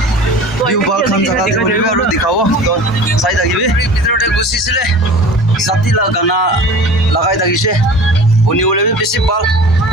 ভিউ বাল খান জাগাতে কৰিব আৰু দেখাব তো চাই থাকিবি ভিতৰতে গুচিছিলে জাতিলা গানা লগাই থাকিছে শুনিবলৈ বেছি ভাল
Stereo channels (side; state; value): both; normal; correlation 0.40